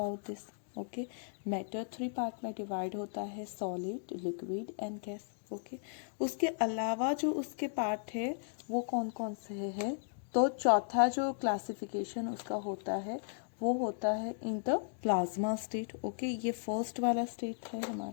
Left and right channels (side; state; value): right; silent; digital silence